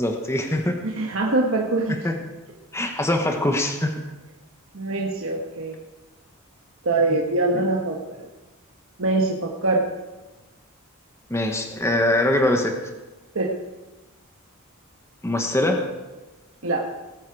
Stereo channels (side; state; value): both; normal; correlation 0.25